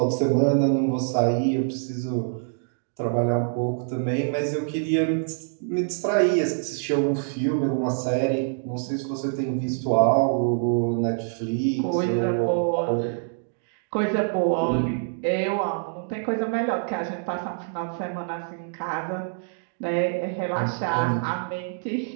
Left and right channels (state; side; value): silent; left; digital silence